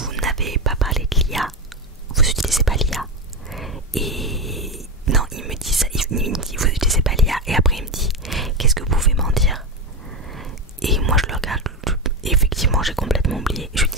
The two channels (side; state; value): both; normal; correlation 0.14